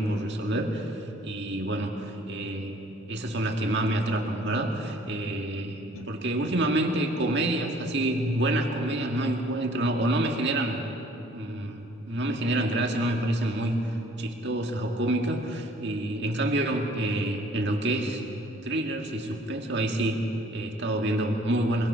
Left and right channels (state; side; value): normal; both; correlation 0.57